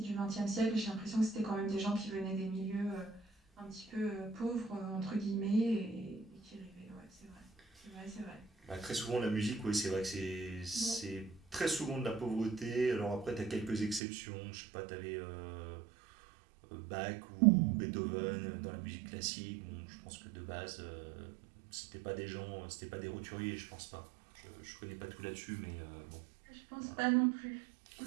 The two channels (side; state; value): left; drops out; at 14.0 s